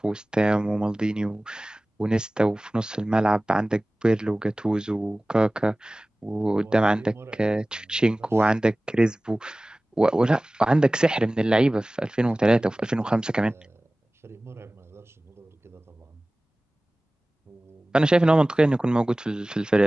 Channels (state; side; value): normal; both; correlation 0.98